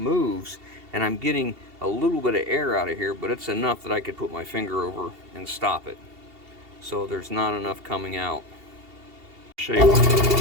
and I'm getting a little bit of air out of here, but it's enough that I could put my finger over and stop it. So there's not enough coming out. Show you.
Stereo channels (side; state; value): left; late; 2.7 ms